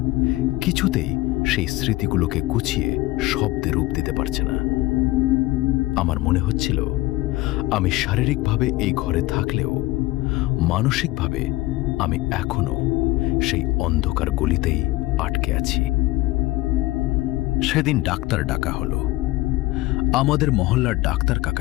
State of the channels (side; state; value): right; quieter; 19.0 dB